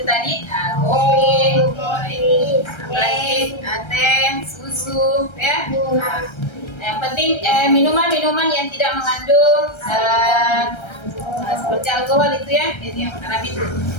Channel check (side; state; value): right; late; 1.3 ms